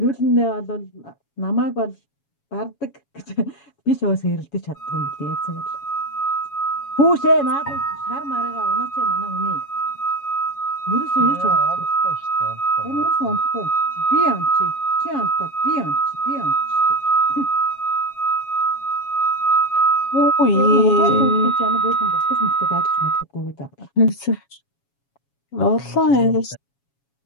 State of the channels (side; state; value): right; late; 7.2 ms